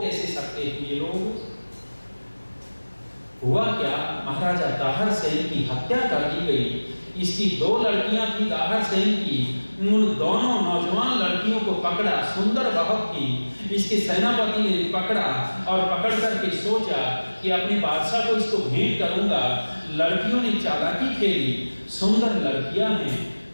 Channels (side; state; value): both; inverted; correlation -1.00